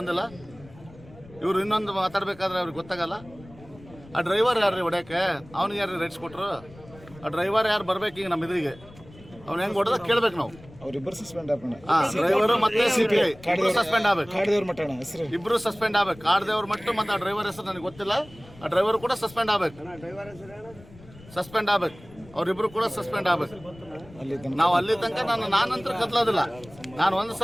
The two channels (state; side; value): noise; left; rumble, 21 dB below the sound